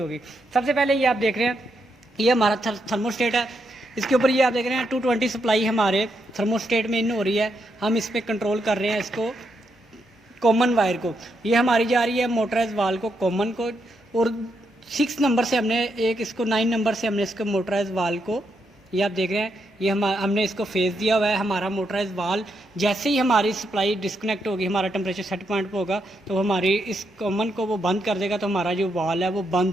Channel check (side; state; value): both; normal; correlation 0.80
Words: सबसे पहले ये आप देख रहे हैं ये हमारा थर्मोस्टेट है। इसके ऊपर ये आप देख रहे हैं 220 सप्लाई हमारे थर्मोस्टेट में इन हो रही है। हम इस पर कंट्रोल कर रहे हैं इसको कॉमन वायर को। ये हमारी जा रही है मोटराइज वाल को, कॉमन को, और 6 नंबर से हमने एक इसको 9 नंबर से हमने इसको मोटराइज वाल को, ये आप देख रहे हैं ये हमने इसको फेस दिया हुआ है। हमारा मोटराइज वाल जैसे ही हमारी सप्लाई डिस्कनेक्ट होगी, हमारा टेम्परेचर सेट पॉइंट पे होगा तो हमारी इस कॉमन को वो बंद कर देगा, तो हमारा जो वाल है वो